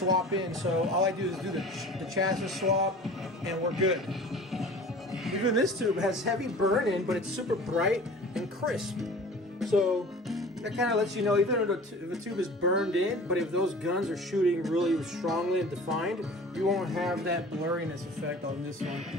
in. So all I do is do the chassis swap, and we're good. Even this tube has heavy burn in, but it's super bright and crisp. So that kind of lets you know, even if the tube is burned in, but if those guns are shooting really strongly and defined, you won't have that blurriness effect on this one.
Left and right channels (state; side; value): normal; both; correlation 0.42